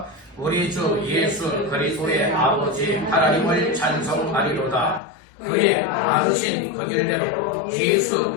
우리 주 예수 그리스도의 아버지 하나님을 찬송하리로다. 그의 많으신 긍휼대로 예수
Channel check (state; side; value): drops out; right; at 5.0 s